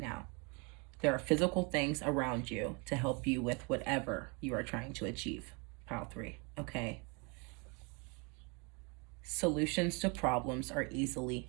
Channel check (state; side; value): quieter; left; 31.7 dB